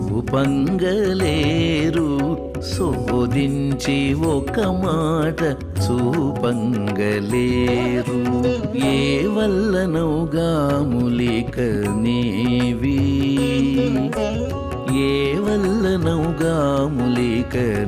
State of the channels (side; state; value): both; identical; correlation 1.00